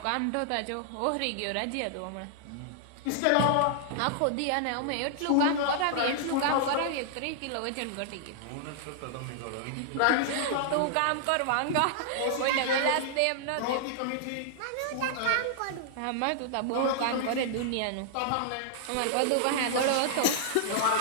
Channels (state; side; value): different; both; correlation -0.01